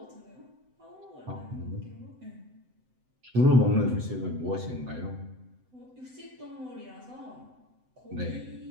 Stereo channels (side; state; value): left; late; 7.8 ms